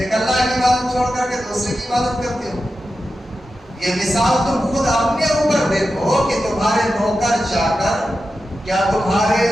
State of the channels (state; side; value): normal; both; correlation 0.91